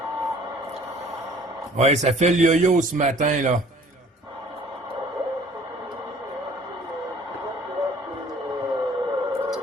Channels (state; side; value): normal; both; correlation 0.53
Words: Ouais, ça fait le yo-yo ce matin, là.